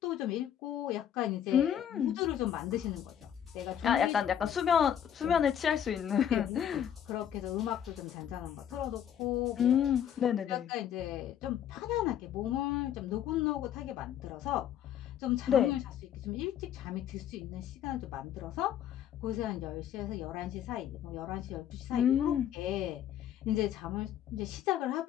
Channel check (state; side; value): quieter; right; 9.8 dB